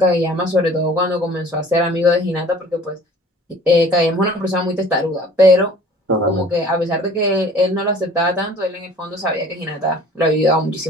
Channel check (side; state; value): both; normal; correlation 0.49